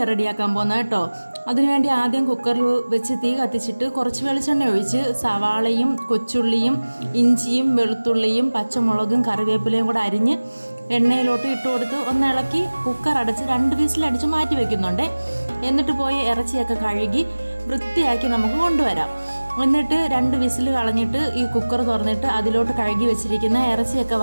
റെഡിയാക്കാൻ പോകുന്നത് കേട്ടോ. അതിനുവേണ്ടി ആദ്യം കുക്കറിൽ വെച്ച് തീ കത്തിച്ചിട്ട് കുറച്ച് വെളിച്ചെണ്ണ ഒഴിച്ച് സവാളയും കൊച്ചുള്ളിയും ഇഞ്ചിയും വെളുത്തുള്ളിയും പച്ചമുളകും കറിവേപ്പിലയും കൂടെ അരിഞ്ഞ് എണ്ണയിലോട്ട് ഇട്ട് കൊടുത്ത് ഒന്ന് ഇളക്കി കുക്കർ അടച്ച് 2 വിസിലടിച്ച് മാറ്റി വയ്ക്കുന്നുണ്ട്. എന്നിട്ട് പോയി ഇറച്ചിയൊക്കെ കഴുകി വൃത്തിയാക്കി നമുക്ക് കൊണ്ടുവരാം. എന്നിട്ട് 2 വിസിൽ കളഞ്ഞിട്ട് ഈ കുക്കർ തുറന്നിട്ട് അതിലോട്ട് കഴുകി വെച്ചിരിക്കുന്ന ഇറച്ചിയൊക്കെ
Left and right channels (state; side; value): inverted; both; correlation -1.00